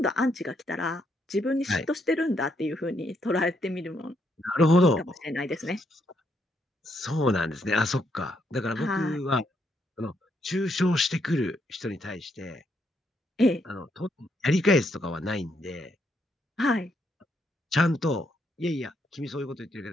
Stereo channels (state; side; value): normal; both; correlation 0.76